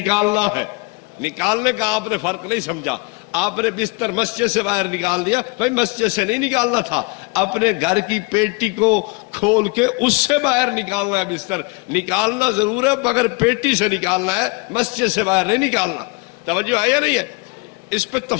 ہے۔ نکالنے کا آپ نے فرق نہیں سمجھا، آپ نے بستر مسجد سے باہر نکال دیا، بھائی مسجد سے نہیں نکالنا تھا، اپنے گھر کی پیٹی کو کھول کے اس سے باہر نکالنا ہے۔ بستر نکالنا ضرور ہے مگر پیٹی سے نکالنا ہے، مسجد سے باہر نہیں نکالنا۔ توجہ ہے یا نہیں ہے؟ اس پہ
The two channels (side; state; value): right; quieter; 28.7 dB